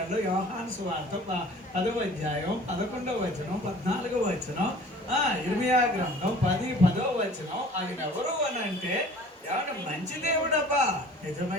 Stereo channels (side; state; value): both; normal; correlation 0.48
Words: యోహాను సువార్త 10వ అధ్యాయం 11వ వచనం, 14వ వచనం, ఇర్మియా గ్రంథం 10వ వచనం, ఆయన ఎవరు అని అంటే ఏమన్నా మంచి దేవుడబ్బా,